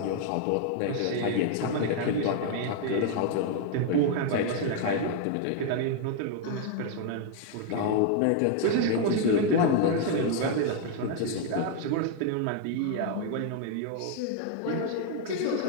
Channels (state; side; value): different; both; correlation 0.00